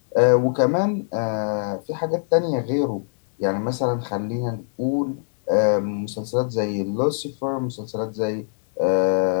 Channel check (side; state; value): right; silent; digital silence